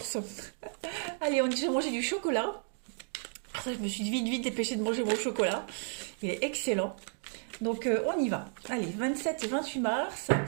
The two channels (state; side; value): silent; left; 56 dB below the other